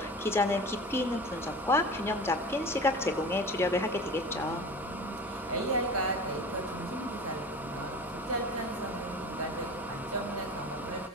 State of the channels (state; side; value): normal; both; correlation 0.35